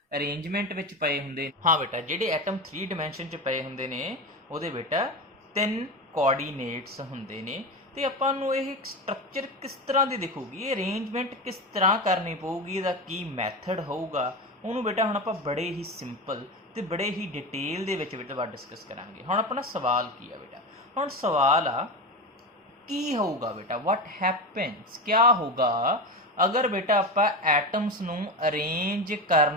ਅਰੇਂਜਮੈਂਟ ਵਿੱਚ ਪਏ ਹੁੰਦੇ, ਹਾਂ ਬੇਟਾ, ਜਿਹੜੇ ਐਟਮ 3 ਡਾਇਮੈਂਸ਼ਨ 'ਚ ਪਏ ਹੁੰਦੇ ਨੇ ਉਹਦੇ ਬੇਟਾ 3 ਕੋਆਰਡੀਨੇਟਸ ਹੁੰਦੇ ਨੇ। ਤੇ ਆਪਾਂ ਨੂੰ ਇਹ ਸਟਰਕਚਰ ਕਿਸ ਤਰ੍ਹਾਂ ਦੀ ਦਿਖੂਗੀ, ਇਹ ਅਰੇਂਜਮੈਂਟ ਕਿਸ ਤਰ੍ਹਾਂ ਕਰਨੀ ਪਊਗੀ, ਇਹਦਾ ਕੀ ਮੈਥਡ ਹੋਊਗਾ, ਉਹਨੂੰ ਬੇਟਾ ਹੁਣ ਆਪਾਂ ਬੜੇ ਹੀ ਸਿੰਪਲ ਤੇ ਬੜੇ ਹੀ ਡਿਟੇਲ ਦੇ ਵਿੱਚ ਬੇਟਾ ਡਿਸਕਸ ਕਰਾਂਗੇ। ਹੁਣ ਆਪਣਾ ਸਵਾਲ ਕੀ ਆ ਬੇਟਾ? ਹੁਣ ਸਵਾਲ ਆ ਕੀ ਹੋਊਗਾ ਬੇਟਾ? ਵਾਟ ਹੈਪਨਸ, ਕਿਆ ਹੋਊਗਾ ਅਗਰ ਬੇਟਾ ਆਪਾਂ ਐਟਮਸ ਨੂੰ ਅਰੇਂਜ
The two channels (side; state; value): both; normal; correlation 0.22